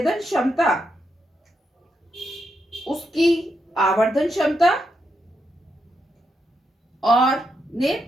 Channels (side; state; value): both; normal; correlation 0.82